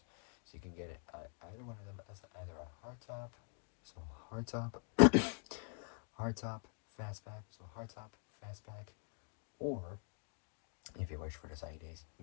So you can get it either one of them as either a hardtop, so hardtop, fastback, so hardtop, fastback, or if you wish for the sunny days, you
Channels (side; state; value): right; quieter; 39.9 dB